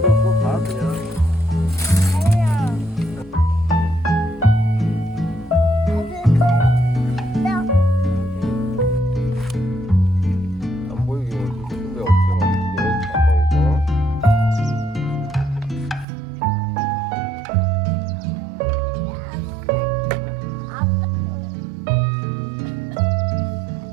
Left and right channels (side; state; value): left; drops out; at 16.1 s